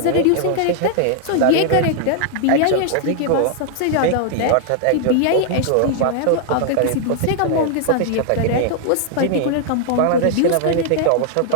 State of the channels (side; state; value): both; different; correlation 0.00